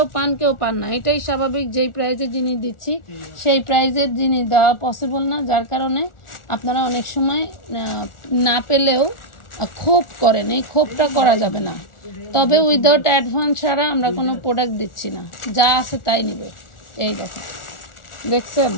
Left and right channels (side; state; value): right; late; 1.4 ms